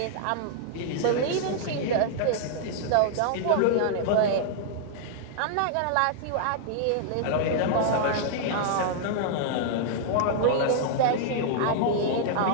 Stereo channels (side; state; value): both; different; correlation -0.01